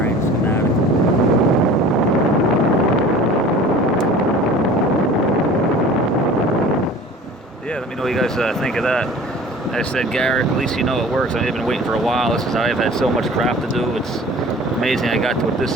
schematic. Yeah, let me know what you guys think of that. Like I said, Garrett, at least you know it works. I've been waiting for a while. This is I've had so much crap to do. It's amazing I got to it this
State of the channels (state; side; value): normal; both; correlation 0.43